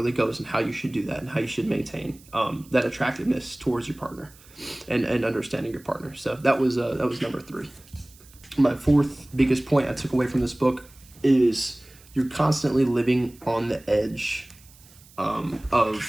goes in how you should do that and how you should maintain that attractiveness towards your partner and understanding your partner. So that was number 3. My fourth biggest point I took away from this book is you're constantly living on the edge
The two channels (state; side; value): noise; right; hiss, 25 dB below the sound